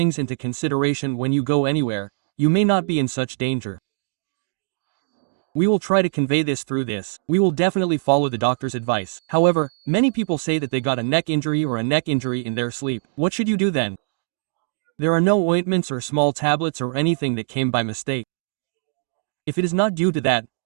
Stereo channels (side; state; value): left; silent; digital silence